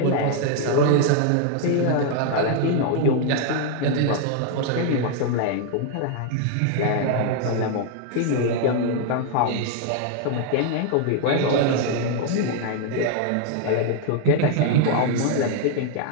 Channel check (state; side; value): different; both; correlation 0.00